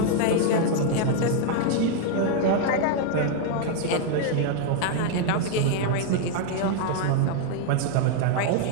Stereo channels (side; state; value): both; different; correlation 0.00